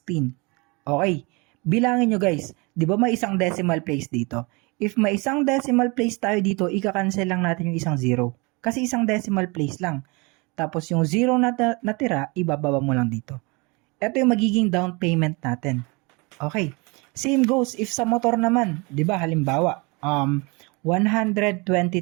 Okay? Bilangin nyo guys, di ba may isang decimal place dito? If may isang decimal place tayo dito, ika-cancel lang natin yung isang 0. Kasi isang decimal place lang. Tapos yung 0 na natira, ibababa mo lang dito. Ito yung magiging down payment natin. Okay. Same goes if sa motor naman. Di ba halimbawa,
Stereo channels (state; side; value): quieter; left; 28.0 dB